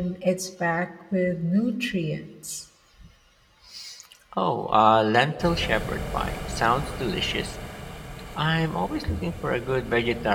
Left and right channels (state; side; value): identical; both; correlation 1.00